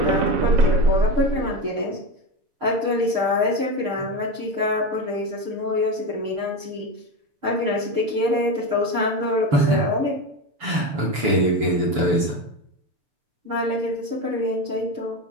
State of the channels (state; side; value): late; left; 6.9 ms